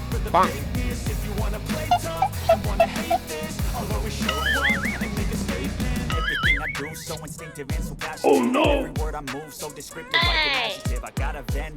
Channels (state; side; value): identical; both; correlation 1.00